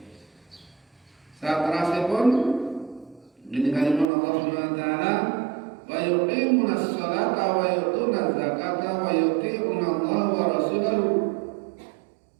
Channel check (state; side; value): drops out; left; at 4.1 s